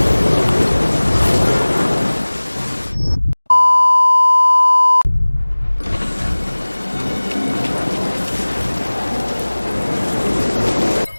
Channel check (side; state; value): both; inverted; correlation -1.00